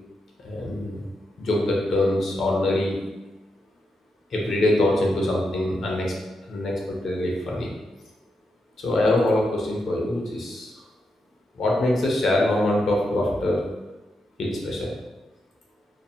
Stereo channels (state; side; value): normal; both; correlation 0.84